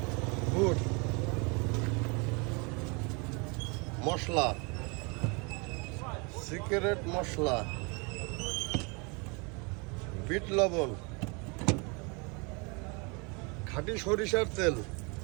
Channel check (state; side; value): quieter; left; 30.9 dB